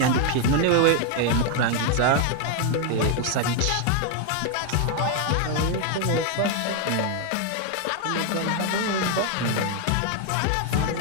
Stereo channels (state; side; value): different; both; correlation 0.00